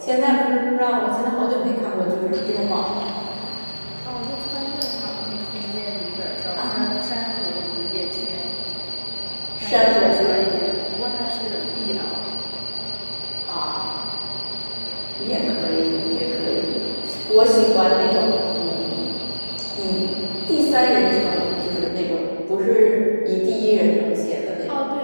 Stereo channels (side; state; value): both; inverted; correlation -1.00